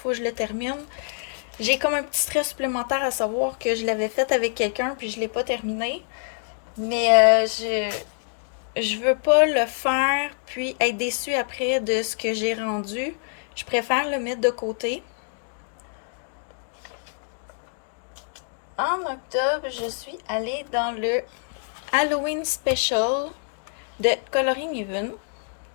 que je le termine. J'ai comme un petit stress supplémentaire à savoir que je l'avais fait avec quelqu'un, puis je l'ai pas terminé. Mais je veux pas le faire, puis être déçue après de ce que j'ai rendu. Je préfère le mettre de côté. En octobre, je suis allée dans le Halloween Special de Coloring Even.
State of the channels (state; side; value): silent; right; digital silence